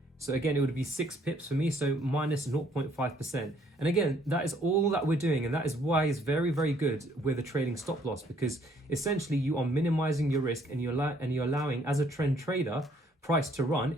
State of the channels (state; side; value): normal; both; correlation 0.64